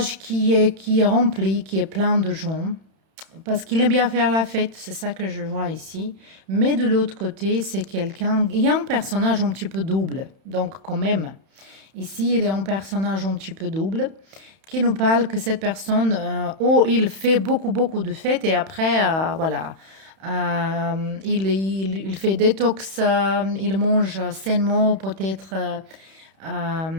qui est rempli, qui est plein de gens. Parce qu'il aime bien faire la fête, c'est ça que je vois ici. Mais de l'autre côté, c'est quelqu'un... Il y a un personnage un petit peu double. Donc quand même, ici, il est un personnage un petit peu double qui nous parle que cette personne, il fait beaucoup de fêtes et après, voilà, il fait détox, il mange sainement, peut-être,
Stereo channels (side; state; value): left; late; 31 ms